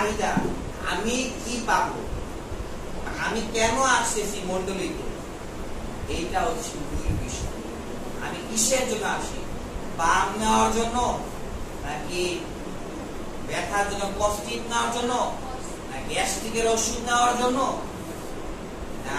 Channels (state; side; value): identical; both; correlation 1.00